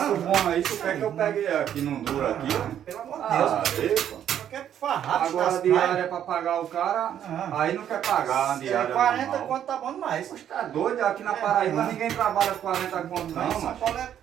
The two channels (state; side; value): quieter; left; 10.0 dB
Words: bom aí, tu quer que eu pegue aqui, não dura aqui, ó? Pelo amor de Deus, Ah, cara. aí, pô. Só quer farrar, Agora a diária é pra pagar o cara, aí não quer pagar a diária 40 normal. conto tá bom demais. Poxa, tá doido? Aqui na Paraíba ninguém trabalha 40 conto não, São mano. Paulo é